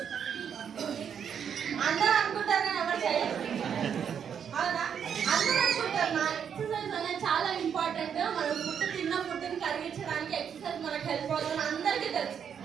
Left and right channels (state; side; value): quieter; left; 7.8 dB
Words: అందరూ అనుకుంటారు కానీ ఎవరు చేయరు. అవునా? అందరూ అనుకుంటారు నా ఎక్సర్సైజ్ అనేది చాలా ఇంపార్టెంట్, మనం ఫుడ్ తిన్న ఫుడ్ని కరిగించడానికి ఎక్సర్సైజ్ మనకు హెల్ప్ అవుతుంది అందరికీ తెలుసు.